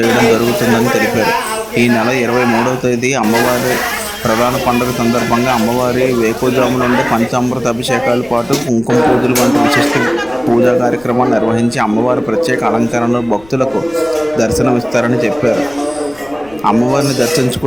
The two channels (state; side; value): noise; left; rumble, 25 dB below the sound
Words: జరుగుతుందని తెలిపారు. ఈ నెల 23వ తేదీ అమ్మవారి ప్రధాన పండుగ సందర్భంగా అమ్మవారి వేకువజాము నుండి పంచామృత అభిషేకాల పాటు కుంకుమ పూజలు వంటి విశిష్ట పూజా కార్యక్రమాలు నిర్వహించి అమ్మవారి ప్రత్యేక అలంకరణలో భక్తులకు దర్శనమిస్తారని చెప్పారు. అమ్మవారిని